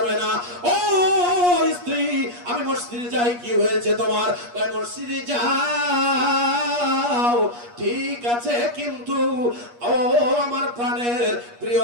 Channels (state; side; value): late; left; 8.4 ms